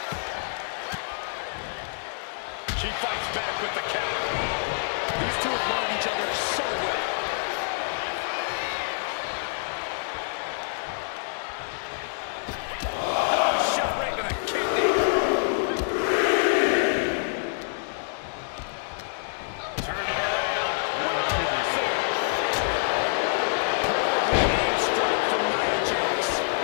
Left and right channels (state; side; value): silent; right; digital silence